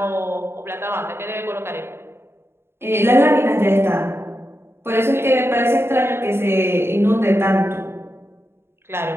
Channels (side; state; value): left; late; 0.12 ms